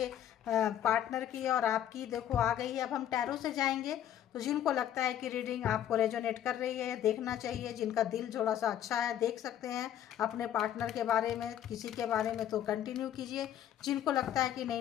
पार्टनर की और आपकी। देखो आ गई है। अब हम टैरो से जाएंगे तो जिनको लगता है कि रीडिंग आपको रेजोनेट कर रही है, देखना चाहिए। जिनका दिल थोड़ा सा अच्छा है, देख सकते हैं अपने पार्टनर के बारे में, किसी के बारे में, तो कंटिन्यू कीजिए। जिनको लगता है कि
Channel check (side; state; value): right; quieter; 10.8 dB